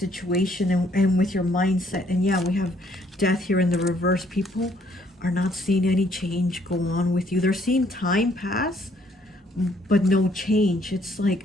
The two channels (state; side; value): normal; both; correlation 0.66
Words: and with your mindset. And yeah, we have Death here in the reverse. People are not seeing any change go on with you. They're seeing time pass, but no change. It's